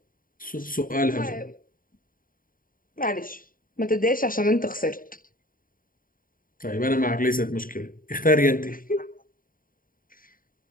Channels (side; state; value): right; late; 0.41 ms